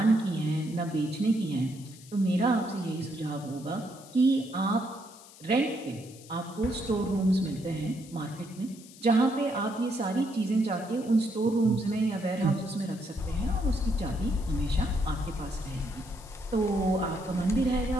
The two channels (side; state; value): left; noise; hiss, 21 dB below the sound